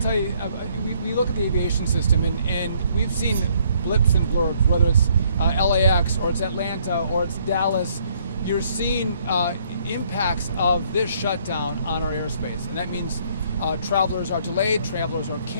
tell you, we look at the aviation system and we've seen blips and blurbs, whether it's LAX or it's Atlanta or it's Dallas. You're seeing impacts of this shutdown on our airspace, and that means travelers are delayed, travelers are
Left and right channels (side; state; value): both; inverted; correlation -0.66